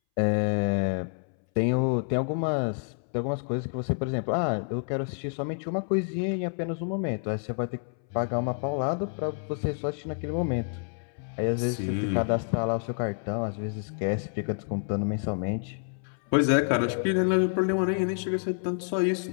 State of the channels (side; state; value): right; silent; 59 dB below the other